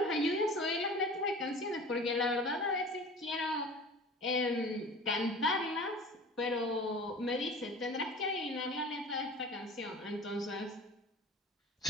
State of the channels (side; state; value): both; normal; correlation 0.41